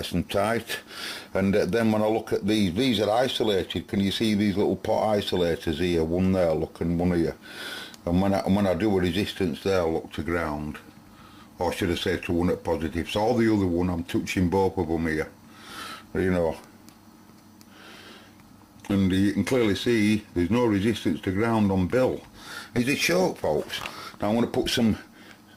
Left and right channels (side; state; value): both; identical; correlation 1.00